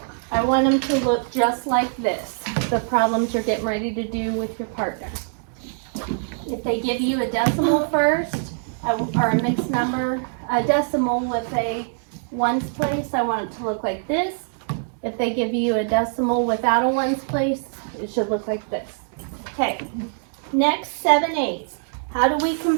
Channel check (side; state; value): left; silent; digital silence